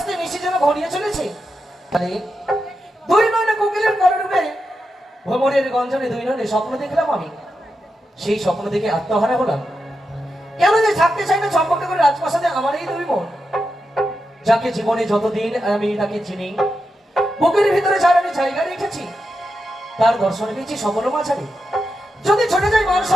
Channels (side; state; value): both; normal; correlation 0.88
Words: নিশি যেন ঘনিয়ে চলেছে। দুই নয়নে কোকিলের কলরূপে ভ্রমরের গঞ্জনে দুই নয়নে স্বপ্ন দেখলাম আমি। সেই স্বপ্ন দেখে আত্মহারা হলাম। কেন যে থাকতে চাই না চম্পকনগরের রাজপ্রাসাদে আমার এই দুই মন, যাকে জীবনে যতদিন আমি তাকে চিনি, বুকের ভিতরে যার আমি জায়গা রেখেছি, তার দর্শন পেয়েছি সকল মাঝারে। যদি ছুটে যাই মান